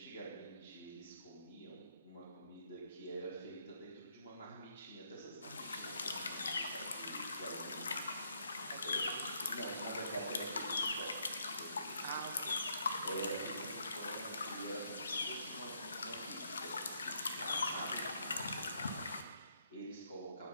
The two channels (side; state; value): both; inverted; correlation -0.71